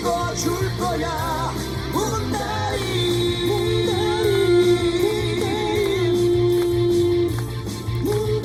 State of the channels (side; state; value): both; identical; correlation 1.00